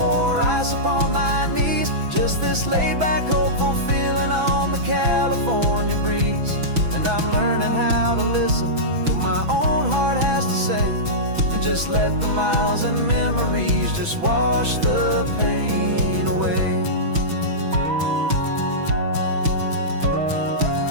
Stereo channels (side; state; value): left; late; 6.1 ms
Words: ice upon my knees, just this laid-back, hopeful feeling on the California breeze. And I'm learning how to listen to what my own heart has to say, and just let the miles and memories just wash the pain away.